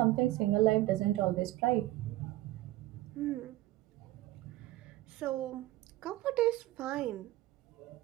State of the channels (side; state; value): left; quieter; 16.9 dB